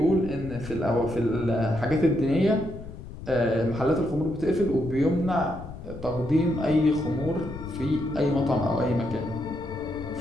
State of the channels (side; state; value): left; noise; rumble, 12 dB below the sound